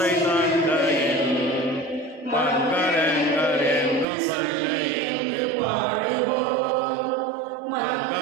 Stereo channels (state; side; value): drops out; left; at 4.0 s